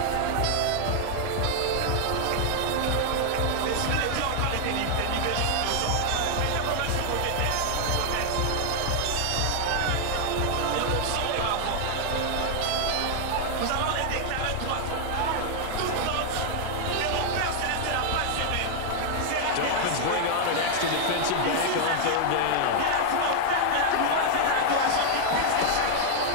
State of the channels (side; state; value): both; different; correlation 0.00